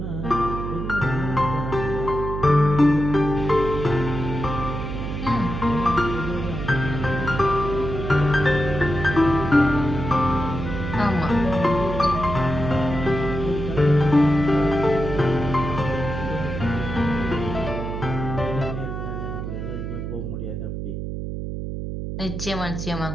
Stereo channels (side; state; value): right; noise; hum, 5 dB below the sound